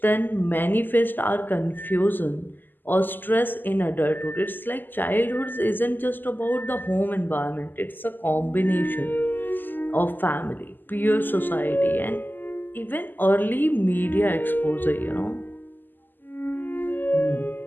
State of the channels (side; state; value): right; late; 0.091 ms